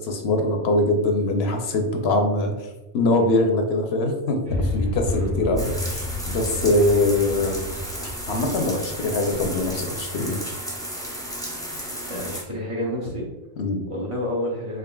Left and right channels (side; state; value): both; normal; correlation 0.06